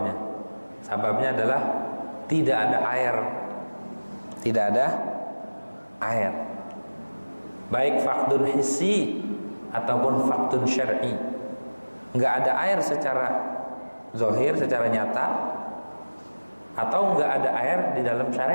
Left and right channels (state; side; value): inverted; both; correlation -1.00